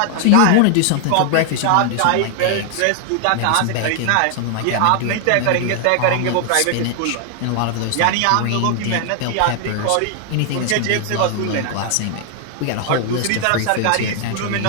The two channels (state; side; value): different; both; correlation 0.00